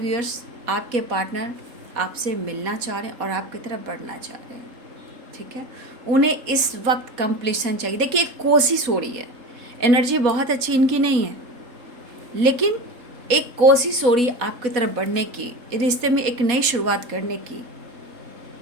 आपके पार्टनर आपसे मिलना चाह रहे हैं और आपकी तरफ बढ़ना चाह रहे हैं। ठीक है, उन्हें इस वक्त कंप्लीशन चाहिए। देखिए एक कोशिश हो रही है, एनर्जी बहुत अच्छी इनकी नहीं है, लेकिन एक कोशिश हो रही है आपकी तरफ बढ़ने की, रिश्ते में एक नई शुरुआत करने की।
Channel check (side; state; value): left; late; 4.2 ms